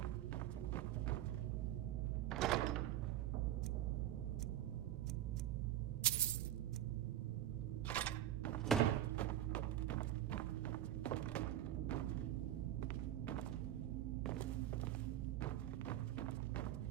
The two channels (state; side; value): quieter; left; 12.3 dB